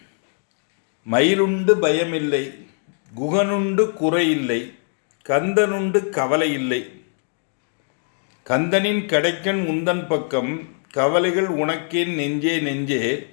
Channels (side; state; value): right; silent; 59 dB below the other